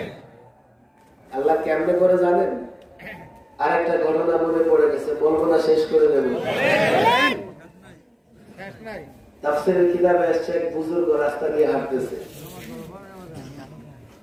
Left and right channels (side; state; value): both; identical; correlation 1.00